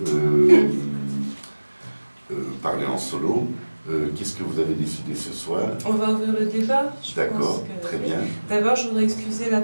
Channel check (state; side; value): inverted; both; correlation -1.00